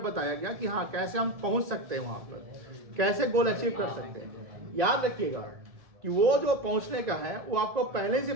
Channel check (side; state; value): left; late; 1.7 ms